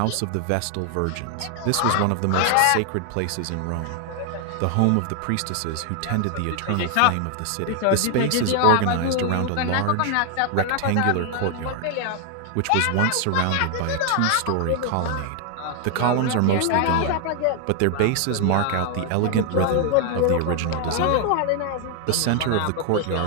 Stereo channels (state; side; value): different; both; correlation 0.00